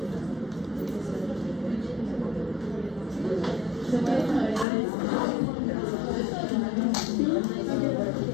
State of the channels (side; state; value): right; drops out; at 4.7 s